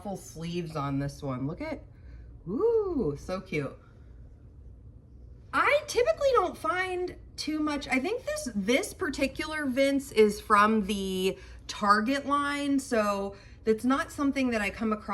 sleeves on this one. Look at, ooh, so cute. I typically don't find too much. I think this particular Vince is from the Target line, so it's not something that I come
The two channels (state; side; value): identical; both; correlation 1.00